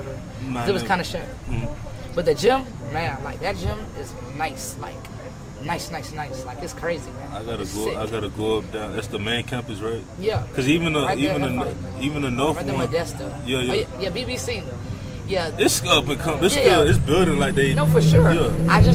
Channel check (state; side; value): identical; both; correlation 1.00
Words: Nah, It was never. kind of shit. But the gym, man, like that gym is nice. Like nice. Like it's crazy, man. I gotta It's go. sick. I gotta go up down. That's the main campus, right? Yeah. Cause even the Right there, even the right even the north Right there, one. Modesto. Yeah. Oh, yeah, BBC. Yeah. It's up and come. It's Yeah. still. It's building like they. No, for sure. Yeah. I